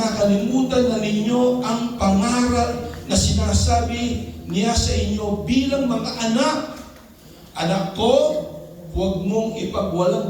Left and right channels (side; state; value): both; identical; correlation 1.00